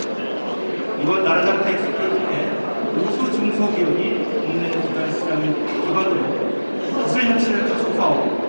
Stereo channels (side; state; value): both; inverted; correlation -1.00